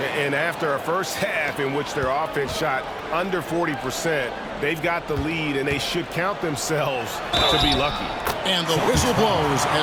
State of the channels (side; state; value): both; identical; correlation 1.00